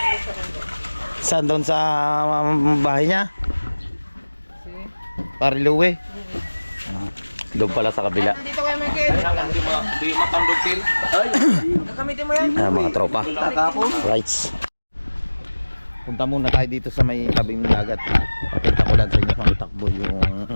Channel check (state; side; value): inverted; both; correlation -1.00